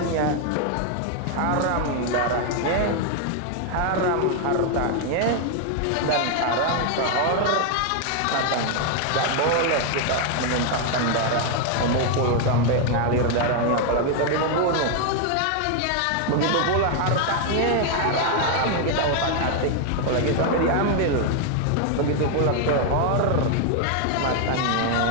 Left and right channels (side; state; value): both; different; correlation 0.01